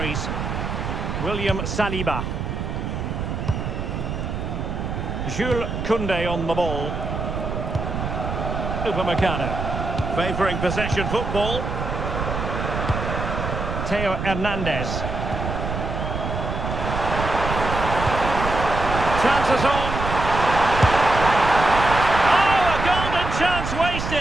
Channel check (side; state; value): right; noise; rumble, 4 dB below the sound